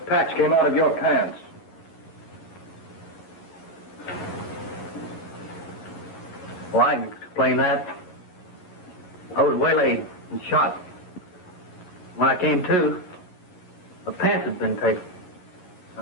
patch came out of your pants? Well, I can explain that. I was waylaid and shot. When I came to, my pants had been taken. I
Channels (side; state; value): right; late; 11 ms